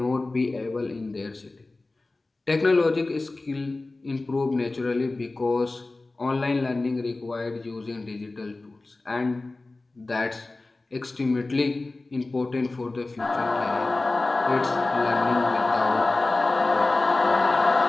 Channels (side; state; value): right; quieter; 3.2 dB